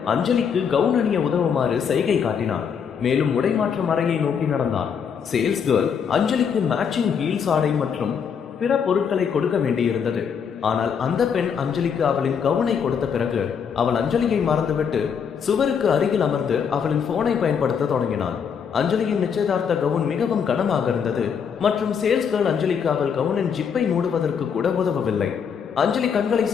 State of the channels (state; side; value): quieter; right; 7.0 dB